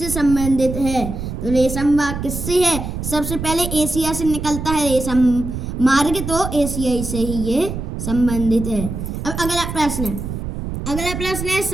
संबंधित है? तो रेशम बाग किससे है? सबसे पहले एशिया से निकलता है रेशम मार्ग, तो एशिया से ही ये संबंधित है। अब अगला प्रश्न है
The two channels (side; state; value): right; noise; rumble, 6 dB below the sound